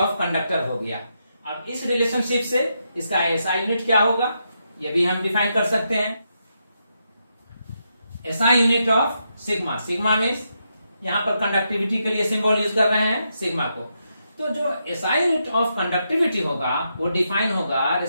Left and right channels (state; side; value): inverted; both; correlation -0.82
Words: कंडक्टर हो गया। अब इस रिलेशनशिप से इसका एसआई यूनिट क्या होगा ये भी हम डिफाइन कर सकते हैं। SI unit of sigma, sigma means यहां पर कंडक्टिविटी के लिए सिंबल यूज कर रहे हैं सिग्मा को। तो जो एसआई यूनिट ऑफ कंडक्टिविटी होगा वो डिफाइन होगा